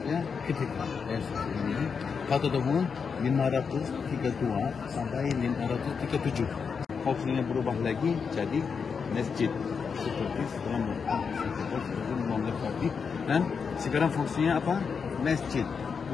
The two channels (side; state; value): right; quieter; 5.9 dB